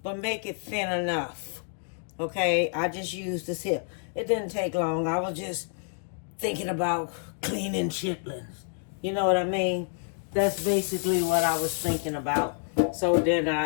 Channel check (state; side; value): silent; right; 58 dB below the other